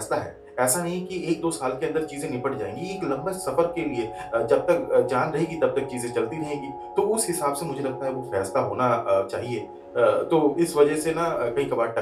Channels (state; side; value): identical; both; correlation 1.00